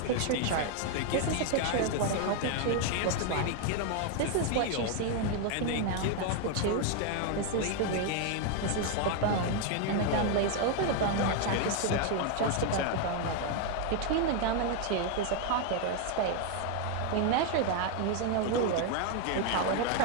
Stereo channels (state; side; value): different; both; correlation 0.01